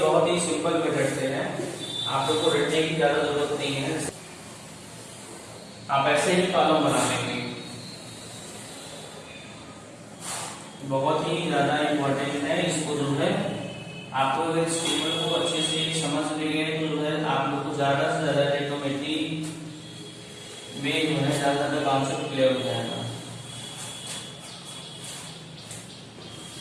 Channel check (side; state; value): both; identical; correlation 1.00